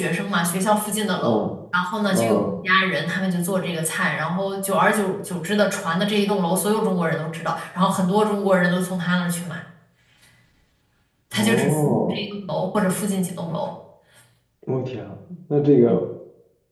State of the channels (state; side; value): identical; both; correlation 1.00